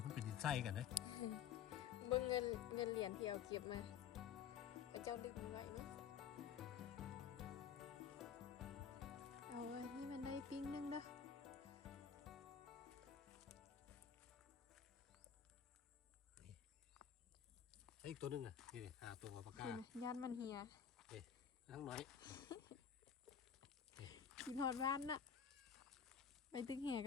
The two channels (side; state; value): right; quieter; 8.1 dB